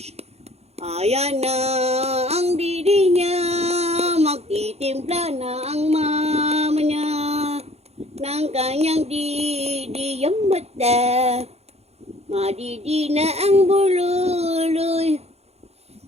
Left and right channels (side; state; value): left; late; 0.31 ms